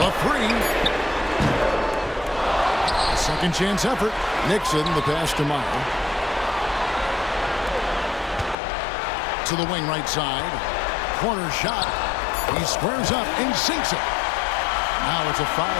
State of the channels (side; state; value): right; drops out; at 8.6 s